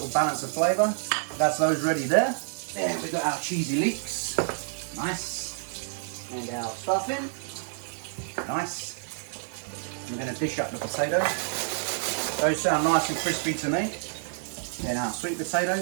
balance of flavour. That's those ready there. Then we've got our cheesy leeks. Nice. And our stuffing. Nice. I'm going to dish up the potatoes. Those sound nice and crispy to me. Then our sweet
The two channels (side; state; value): left; silent; 59 dB below the other